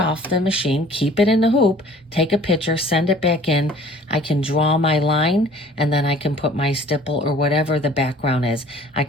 the machine, keep it in the hoop, take a picture, send it back in. I can draw my line, and then I can put my stipple or whatever the background is. I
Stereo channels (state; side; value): normal; both; correlation 0.50